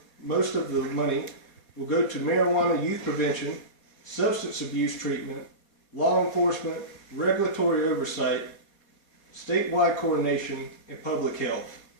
most of the money will go to marijuana youth prevention, substance abuse treatment, law enforcement, regulatory oversight, statewide coordination, and public health.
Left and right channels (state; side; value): late; right; 4.2 ms